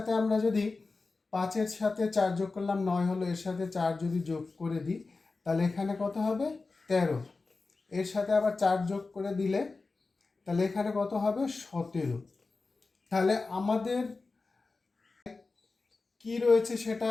আমরা যদি 5-এর সাথে 4 যোগ করলাম 9 হলো, এর সাথে 4 যদি যোগ করে দিই তাহলে এখানে কত হবে, 13। এর সাথে আবার 4 যোগ করে দিলে তাহলে এখানে কত হবে, 17। তাহলে আমাদের কি রয়েছে সেটা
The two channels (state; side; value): quieter; right; 3.8 dB